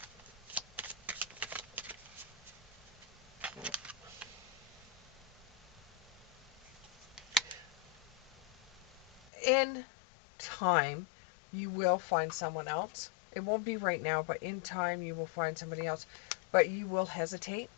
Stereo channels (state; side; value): drops out; right; at 9.3 s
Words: In time, you will find someone else. It won't be right now, but in time you will find somebody else. But you will hesitate.